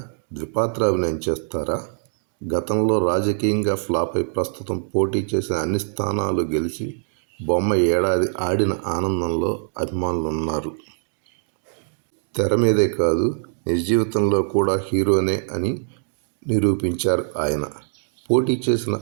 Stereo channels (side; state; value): left; silent; digital silence